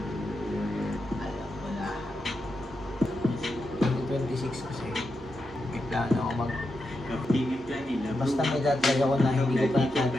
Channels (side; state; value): both; normal; correlation 0.86